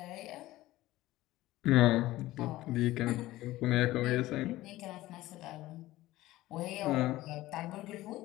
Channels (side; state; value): right; quieter; 16.8 dB